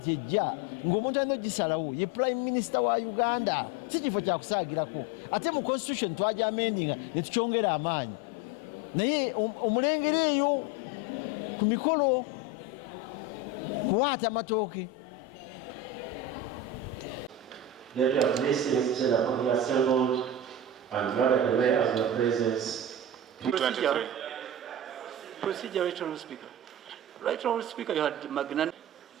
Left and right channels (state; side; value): normal; both; correlation 0.23